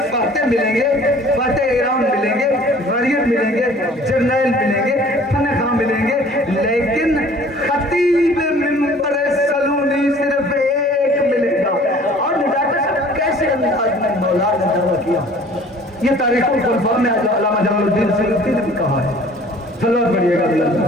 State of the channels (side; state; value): both; normal; correlation 0.50